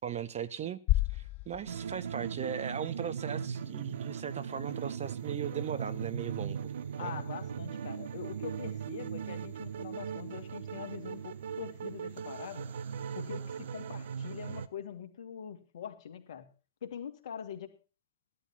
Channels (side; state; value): both; inverted; correlation -0.34